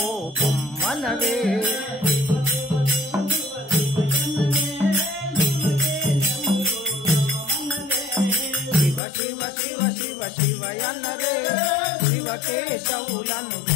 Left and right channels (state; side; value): drops out; right; at 9.0 s